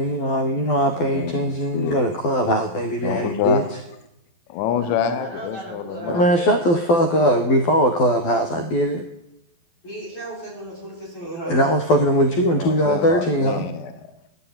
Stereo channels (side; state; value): right; late; 12 ms